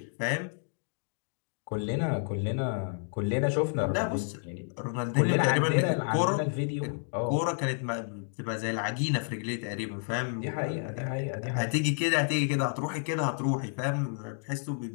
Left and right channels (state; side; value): silent; right; 58 dB below the other